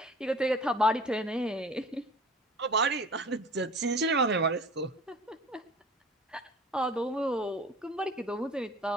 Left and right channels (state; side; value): normal; both; correlation 0.44